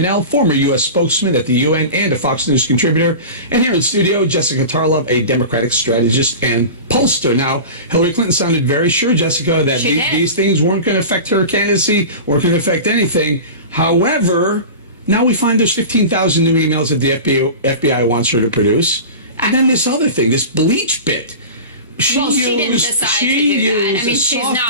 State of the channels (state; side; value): inverted; both; correlation -0.31